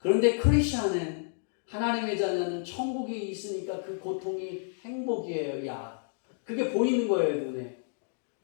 크리스천은, 하나님의 자녀는 천국이 있으니까 그 고통이 행복이에요. 야, 그게 보이는 거예요, 눈에.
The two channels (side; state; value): right; silent; digital silence